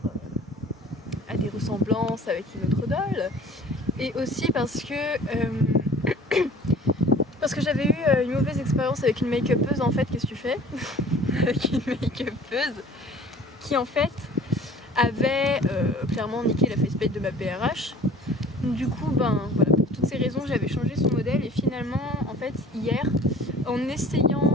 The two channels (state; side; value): normal; both; correlation 0.47